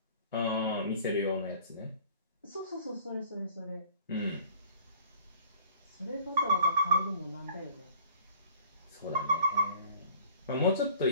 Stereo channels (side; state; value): both; inverted; correlation -0.50